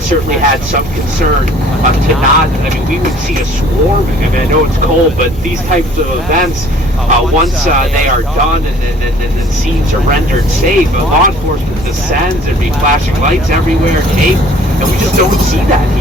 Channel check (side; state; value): both; normal; correlation 0.54